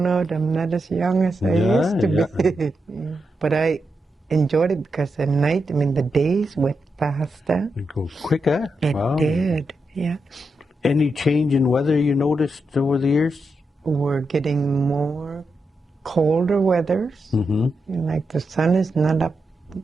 out I'm not as young as I used to be. But I enjoyed it because at night, the days went faster. It goes quicker. It did, yeah. Any change in weather you noticed over the years? We're getting more colder weathers. Like the sun is not up.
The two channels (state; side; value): normal; both; correlation 0.86